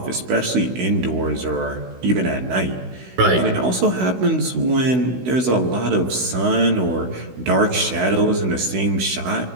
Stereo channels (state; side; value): late; left; 16 ms